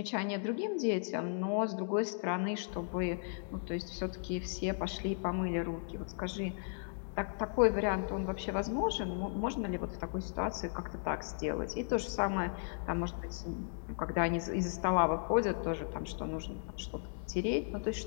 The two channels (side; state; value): right; silent; digital silence